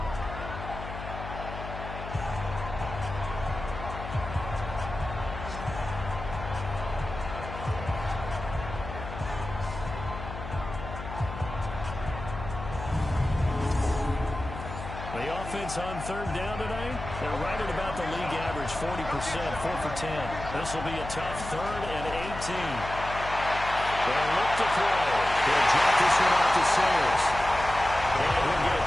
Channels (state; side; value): noise; left; hum, 9 dB below the sound